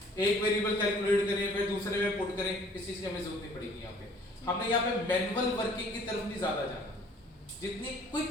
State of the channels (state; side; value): normal; both; correlation 0.55